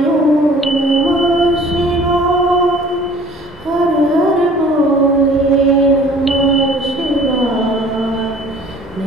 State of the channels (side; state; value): both; normal; correlation 0.50